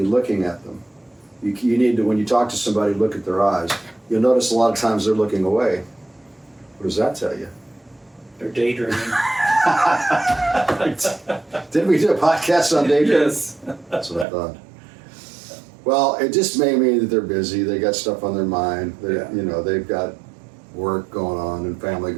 looking at them? You need to, when you talk to somebody, look at their eyes. You'll notice a lot of times they're looking away. What does that tell you? They're daydreaming. Didn't we do a podcast on daydreaming? Yes. That's what I thought. Well, it just may mean that they're busy. They got stuff on their mind. Yeah. You know, they've got work going on and family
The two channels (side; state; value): left; drops out; at 14.2 s